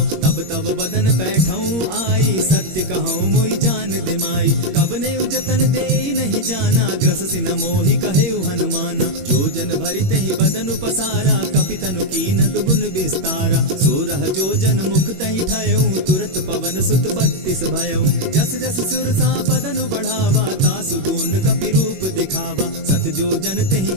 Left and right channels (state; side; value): late; left; 21 ms